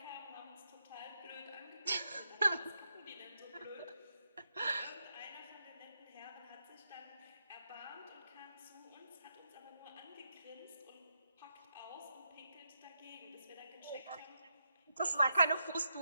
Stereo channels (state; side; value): inverted; both; correlation -0.83